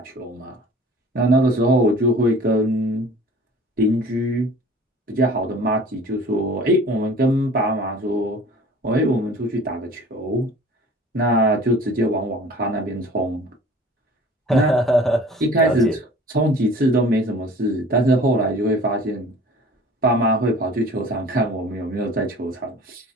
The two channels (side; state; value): both; normal; correlation 0.46